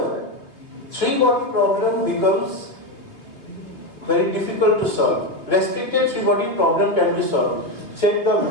three-body problem becomes very difficult to solve. Restricted three-body problem can be solved. Check the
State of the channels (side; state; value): right; late; 2.7 ms